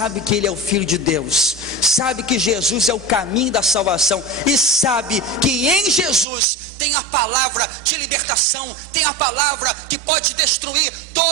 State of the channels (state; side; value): drops out; left; at 6.2 s